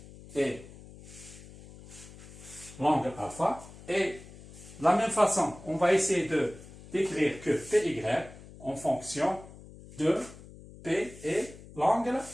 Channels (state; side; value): noise; left; hum, 18 dB below the sound